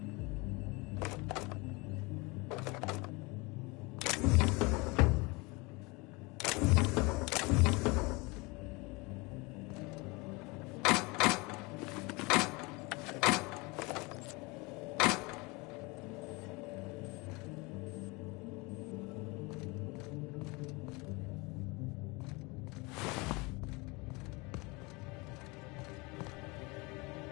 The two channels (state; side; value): quieter; right; 26.1 dB